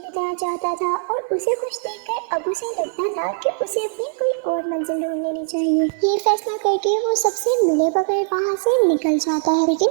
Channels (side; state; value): left; silent; 63 dB below the other